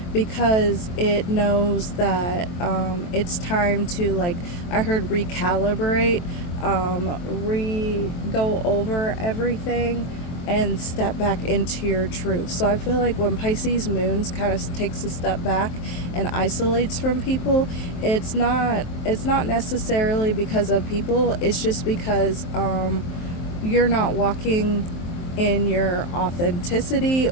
because it knows that it's time to, like, I heard recalibrate, go over everything, and step back into your truth. So I feel like when Pisces moons kind of takes a step back and isolates from people, it's not necessarily because of people. It's just because you're not walking in your authenticity,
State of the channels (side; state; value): right; late; 23 ms